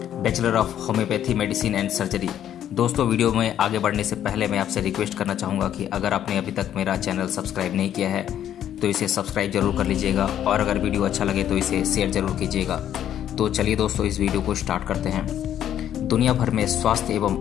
bachelor of homeopathy medicine and surgery. दोस्तों, वीडियो में आगे बढ़ने से पहले मैं आपसे रिक्वेस्ट करना चाहूँगा कि अगर आपने अभी तक मेरा चैनल सब्सक्राइब नहीं किया है तो इसे सब्सक्राइब जरूर कर लीजिएगा, और अगर वीडियो अच्छा लगे तो इसे शेयर जरूर कीजिएगा। तो चलिए दोस्तों, इस वीडियो को स्टार्ट करते हैं। दुनिया भर में स्वास्थ्य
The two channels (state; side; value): quieter; right; 10.6 dB